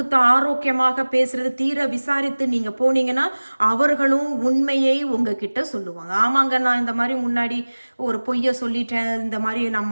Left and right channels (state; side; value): inverted; both; correlation -1.00